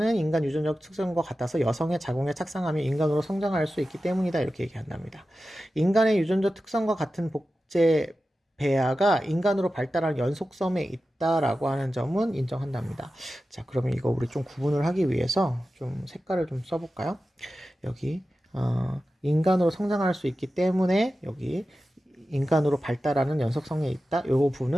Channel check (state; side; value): normal; both; correlation 0.93